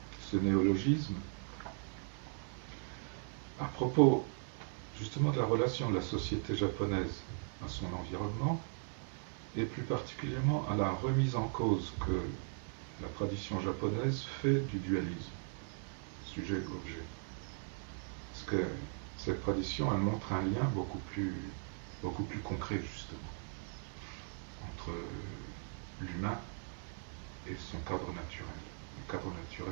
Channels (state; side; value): silent; left; 52 dB below the other